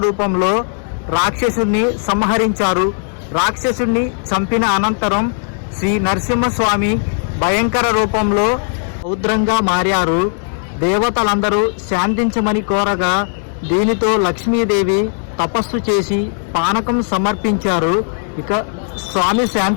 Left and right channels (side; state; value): right; silent; 68 dB below the other